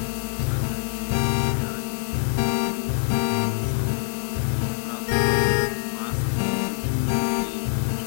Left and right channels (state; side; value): silent; right; digital silence